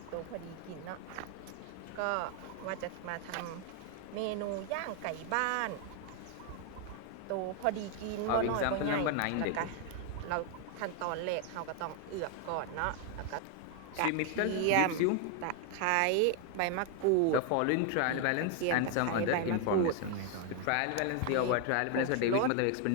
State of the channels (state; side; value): different; both; correlation 0.00